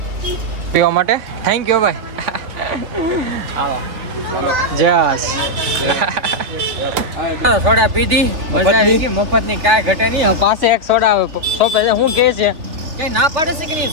પીવા માટે. થેન્ક યુ ભાઈ. હાલો જસ સોડા પીધી, મજા આવી ગઈ. મફતની કાંઈ ઘટે નહીં. પાસે એક સોડા સોંપે છે. શું કહે છે કઈ ના પાડે છે કે નહીં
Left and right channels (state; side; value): late; left; 3.2 ms